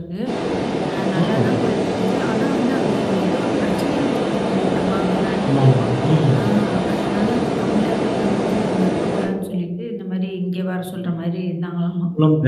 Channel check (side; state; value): both; identical; correlation 1.00